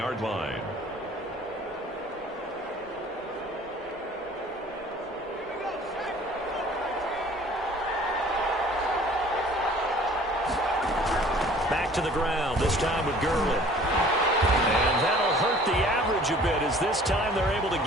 line. Back to the ground, this time with Gurley. And that'll hurt the average a bit as this time they're able to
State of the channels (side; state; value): both; normal; correlation 0.51